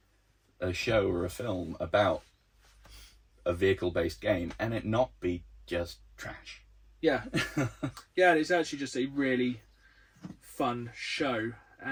a show or a film about a vehicle-based game and it not be just trash. Yeah. Yeah, it's actually just a really fun show.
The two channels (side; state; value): both; identical; correlation 1.00